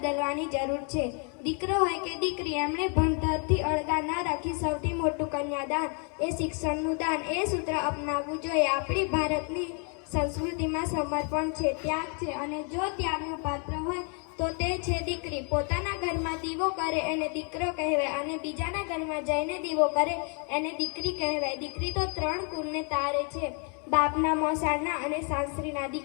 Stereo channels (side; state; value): right; quieter; 39.1 dB